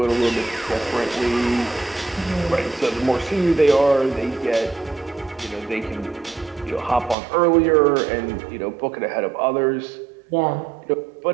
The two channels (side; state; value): left; drops out; at 7.2 s